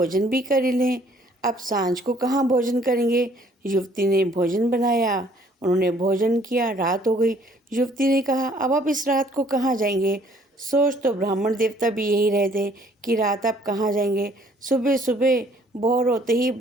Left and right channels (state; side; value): normal; both; correlation 0.61